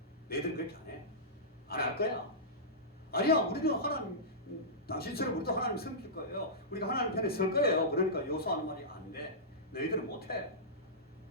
너희들은 그렇게 안 해? 안 할 거야? 아니야, 우리는 하나님, 당신처럼 우리도 하나님 섬길 거예요. 우리가 하나님 편에 설 거예요. 그러니까 여호수아는 말이 안 돼. 너희들은 못해.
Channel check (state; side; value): normal; both; correlation -0.17